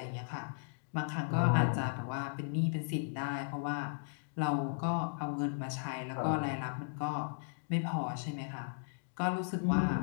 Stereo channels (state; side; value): silent; right; digital silence